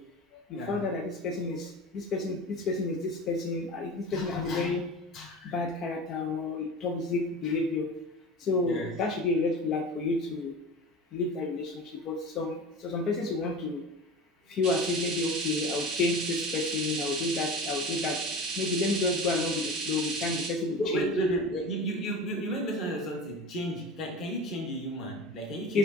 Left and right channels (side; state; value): both; normal; correlation 0.32